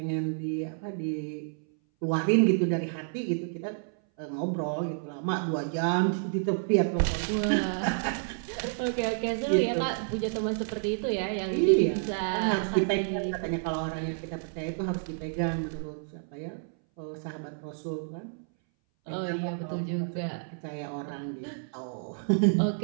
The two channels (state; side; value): silent; left; 58 dB below the other